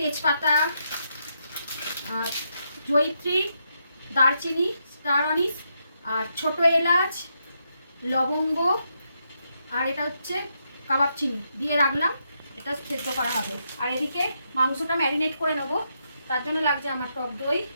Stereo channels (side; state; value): both; inverted; correlation -0.80